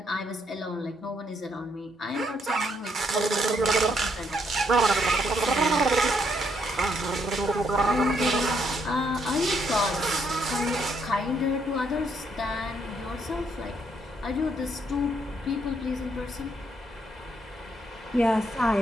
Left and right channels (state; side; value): normal; both; correlation 0.73